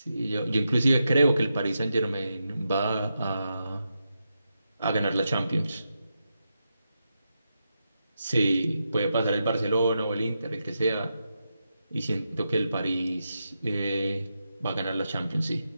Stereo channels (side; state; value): both; inverted; correlation -0.86